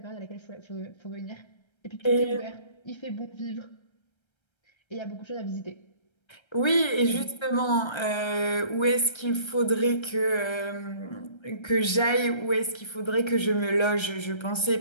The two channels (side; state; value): right; late; 1.3 ms